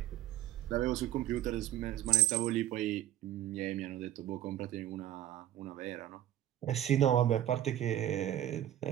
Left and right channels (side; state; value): left; quieter; 12.4 dB